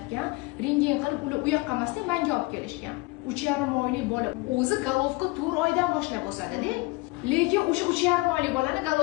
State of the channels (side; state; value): right; quieter; 23.6 dB